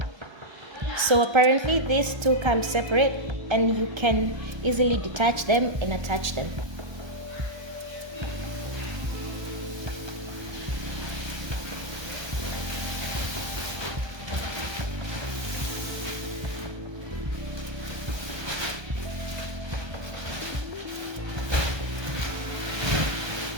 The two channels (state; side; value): late; left; 1.3 ms